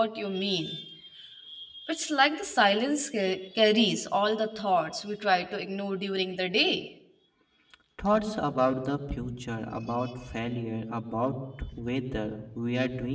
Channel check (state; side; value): identical; both; correlation 1.00